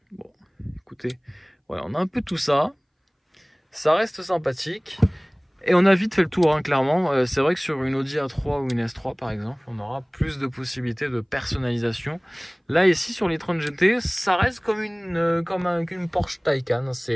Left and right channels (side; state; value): both; identical; correlation 1.00